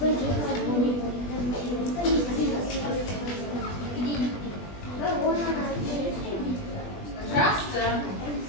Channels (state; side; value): late; right; 20 ms